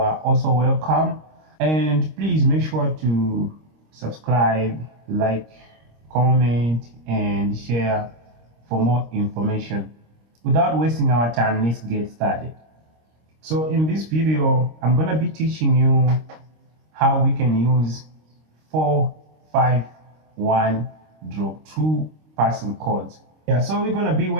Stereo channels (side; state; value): left; late; 26 ms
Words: also welcome, and please make sure to subscribe, like, comment and share for more information. Without wasting our time, let's get started. So in this video, I'm going to be teaching you how we can use 4-5-1 drop 2 passing chords. Yeah, so we're going to be